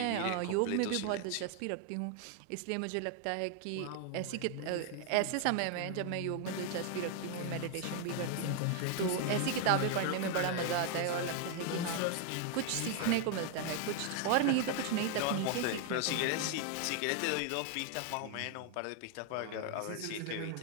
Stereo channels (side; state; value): both; different; correlation 0.00